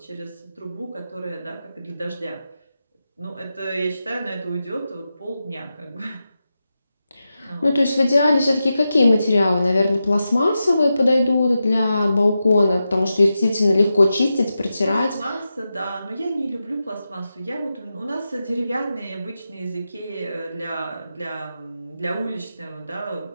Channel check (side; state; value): both; inverted; correlation -0.90